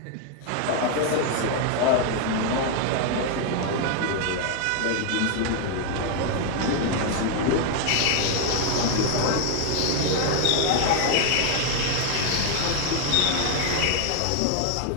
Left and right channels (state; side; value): different; both; correlation 0.00